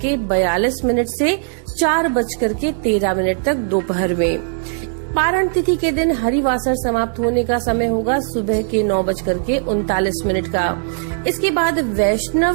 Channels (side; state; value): left; silent; digital silence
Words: से 4:13 तक दोपहर में। पारण तिथि के दिन हरिवासर समाप्त होने का समय होगा सुबह के 9:39 का। इसके बाद